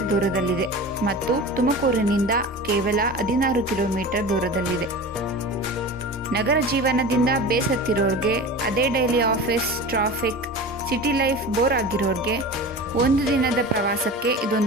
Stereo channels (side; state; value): both; normal; correlation 0.33